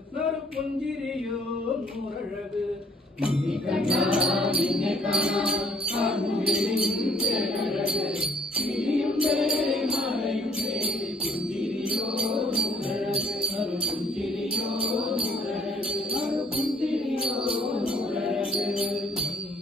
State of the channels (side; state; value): both; normal; correlation 0.63